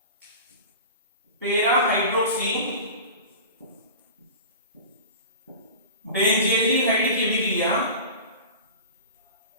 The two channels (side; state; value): both; inverted; correlation -0.34